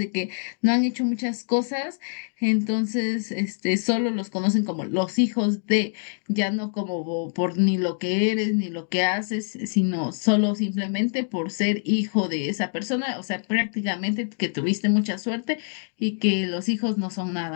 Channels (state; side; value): silent; right; 62 dB below the other